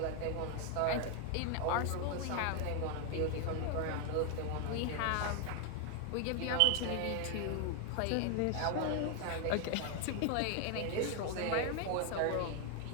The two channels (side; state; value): both; different; correlation 0.00